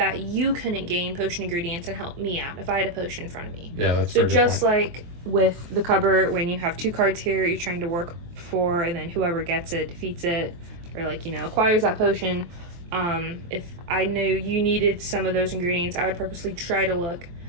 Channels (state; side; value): late; left; 23 ms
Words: you couldn't gain potion ingredients and help me out if I had a potion in front of me. Yeah, that's so just like with the cupboard, when you have 2 cards here you're trying to work for, and then whoever gets it defeats it, or like, acquires that potion. If I knew you needed some of those ingredients, I would purposely try to look